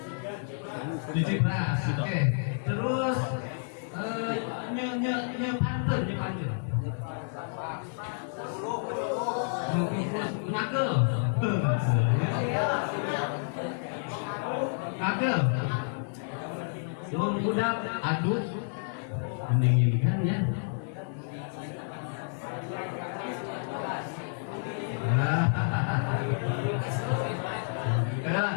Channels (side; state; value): right; silent; 57 dB below the other